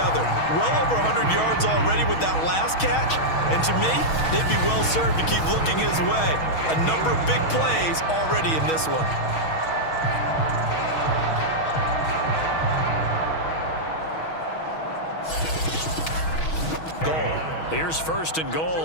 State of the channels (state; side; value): late; right; 6.3 ms